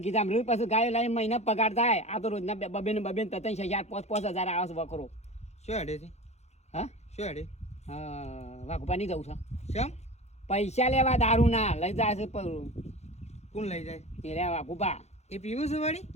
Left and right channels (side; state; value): right; late; 0.32 ms